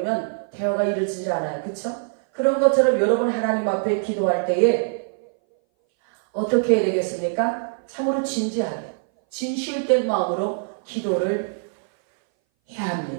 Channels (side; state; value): left; silent; 60 dB below the other